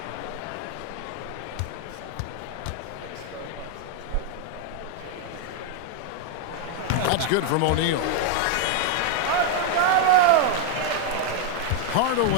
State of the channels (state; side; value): different; both; correlation 0.00